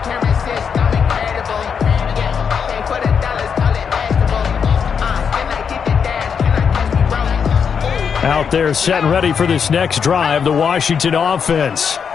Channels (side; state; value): right; quieter; 6.7 dB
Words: Out there set and ready for this next drive, the Washington offense.